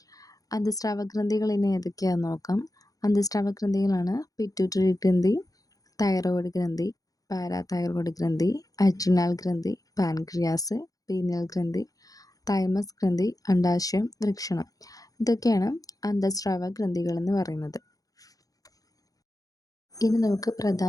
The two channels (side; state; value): right; late; 0.17 ms